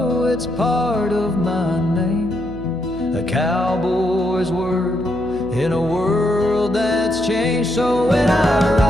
it's part of my name. A cowboy's word in a world that's changed. So when I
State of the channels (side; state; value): right; noise; hum, 13 dB below the sound